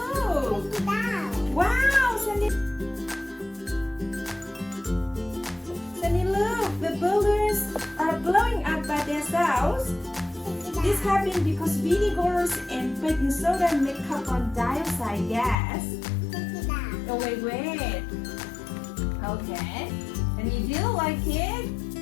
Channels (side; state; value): right; drops out; at 15.6 s